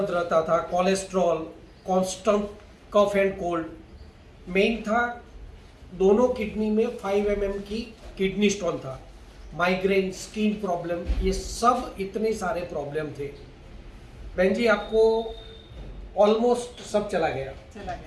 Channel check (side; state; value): both; identical; correlation 1.00